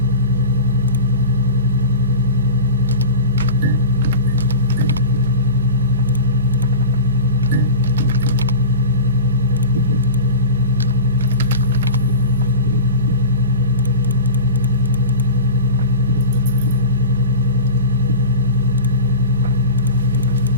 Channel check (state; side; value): inverted; both; correlation -0.31